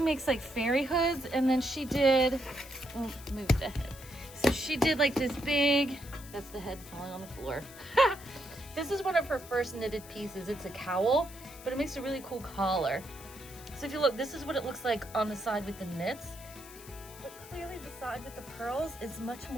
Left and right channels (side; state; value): left; noise; hiss, 17 dB below the sound